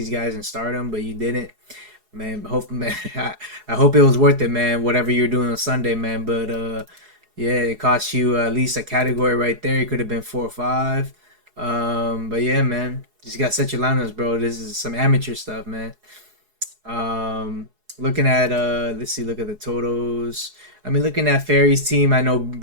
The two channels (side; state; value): left; late; 4.8 ms